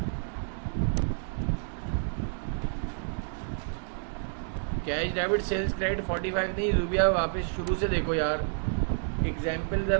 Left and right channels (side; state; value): left; silent; digital silence